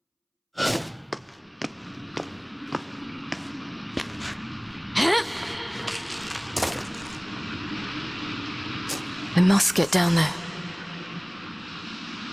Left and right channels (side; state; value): both; identical; correlation 1.00